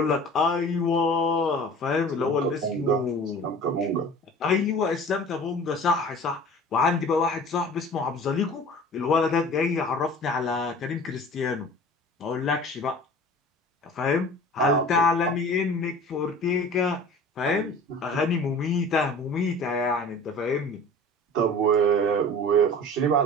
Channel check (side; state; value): both; normal; correlation 0.42